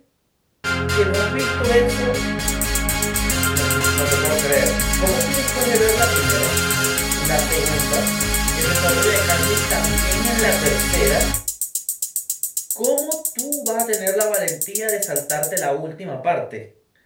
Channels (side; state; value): both; identical; correlation 1.00